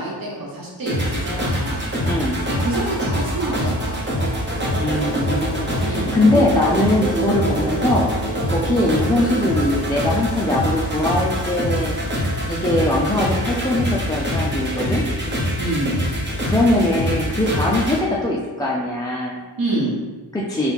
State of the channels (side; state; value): both; normal; correlation 0.54